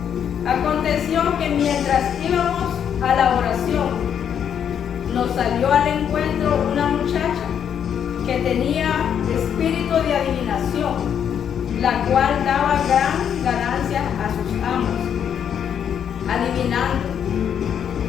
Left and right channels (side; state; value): right; quieter; 8.5 dB